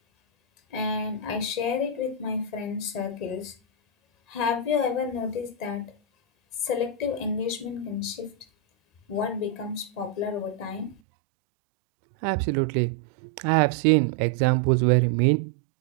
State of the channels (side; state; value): left; drops out; at 11.0 s